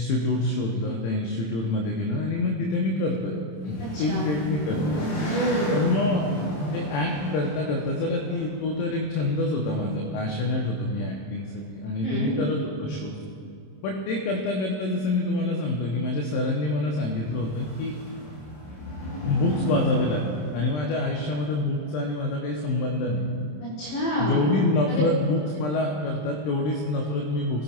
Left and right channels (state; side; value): late; right; 27 ms